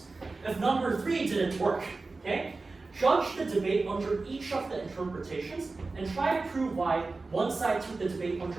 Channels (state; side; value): quieter; left; 3.7 dB